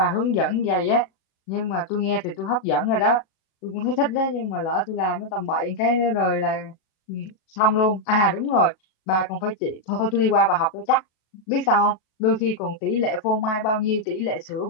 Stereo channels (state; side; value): late; right; 37 ms